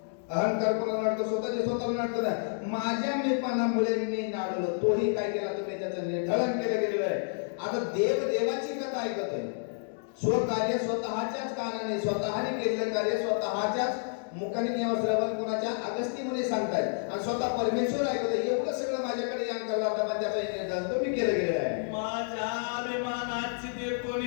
अहंकार कोणाला नडतो, स्वतःचे स्वतःला नडतो ना. माझ्या मीपणामुळे मी नाडलो, तोही काय केला तुम्ही त्याचं निर्धारण केलं गेलेलं आहे. आता देवाची कथा ऐकतोय, स्वकार्य स्वतःच्याच कानाने स्वतःने केलेलं कार्य स्वतःच्याच मुखाने किंवा श्रवण कोणाच्या अगस्ती मुनी सांगतायत आणि स्वतः परमेश्वर ऐकतोय. एवढं सगळं माझ्याकडे यान करला होता, पण त्याचा निर्धारण तुम्ही केलं गेलेलं आहे. माझ्या अभिमानाची ते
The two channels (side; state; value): right; silent; 58 dB below the other